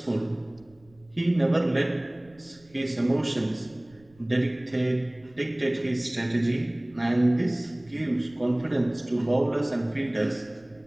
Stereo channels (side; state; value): right; noise; rumble, 29 dB below the sound